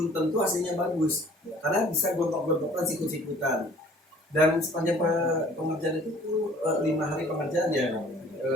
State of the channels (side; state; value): both; normal; correlation 0.53